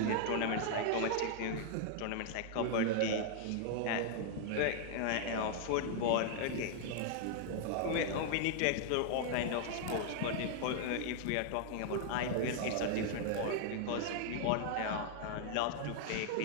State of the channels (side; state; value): both; different; correlation -0.01